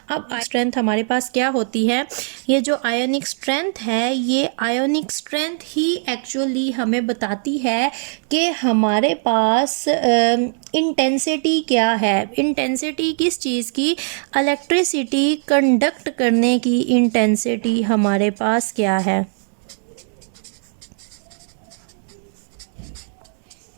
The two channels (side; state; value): left; silent; 66 dB below the other